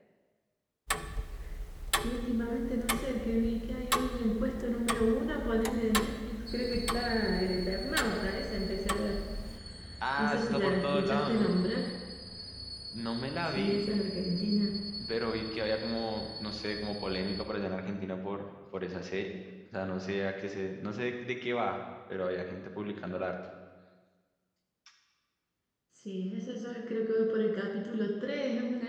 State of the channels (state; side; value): identical; both; correlation 1.00